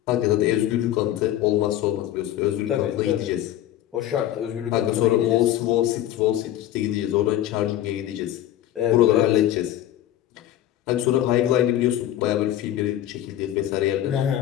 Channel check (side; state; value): right; quieter; 12.7 dB